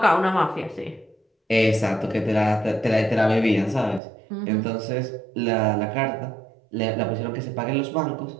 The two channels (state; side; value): drops out; left; at 4.0 s